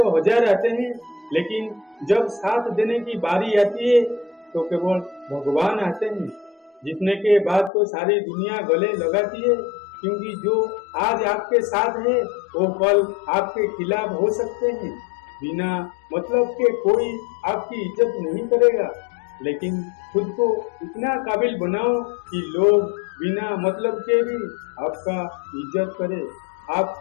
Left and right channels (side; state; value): right; drops out; at 7.7 s